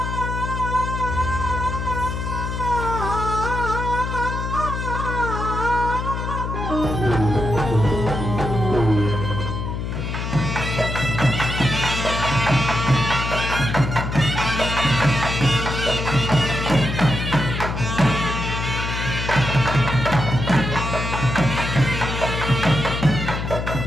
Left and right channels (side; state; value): left; noise; hum, 4 dB below the sound